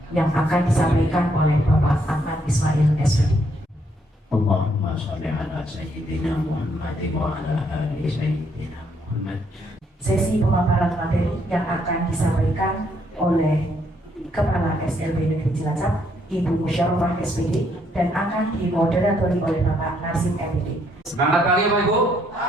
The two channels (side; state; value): both; normal; correlation 0.72